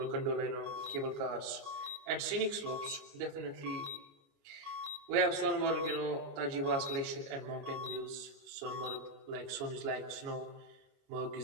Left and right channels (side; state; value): left; late; 29 ms